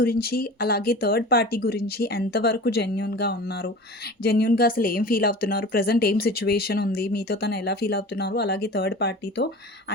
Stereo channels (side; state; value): both; normal; correlation 0.37